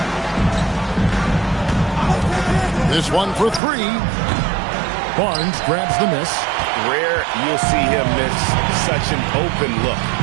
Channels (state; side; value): drops out; left; at 3.6 s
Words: This one for 3. Barnes grabs the miss. Rare you'll see him miss such an open look.